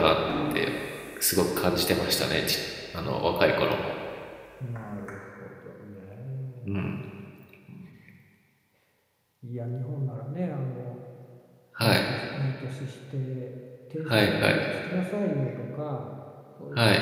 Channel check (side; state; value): both; identical; correlation 1.00